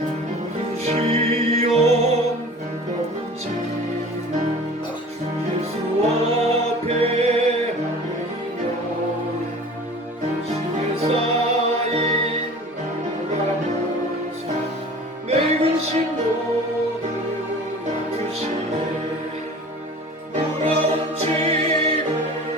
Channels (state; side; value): normal; both; correlation 0.42